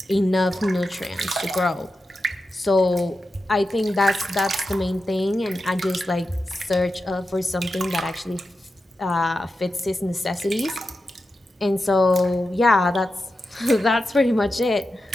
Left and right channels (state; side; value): normal; both; correlation 0.90